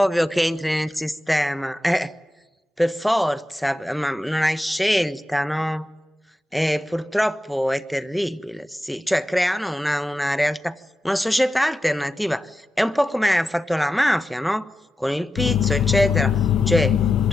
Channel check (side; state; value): both; normal; correlation 0.90